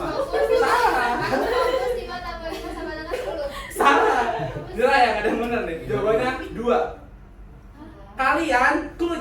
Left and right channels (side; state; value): both; identical; correlation 1.00